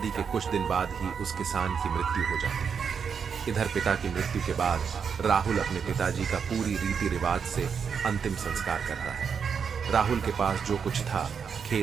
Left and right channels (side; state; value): left; quieter; 6.6 dB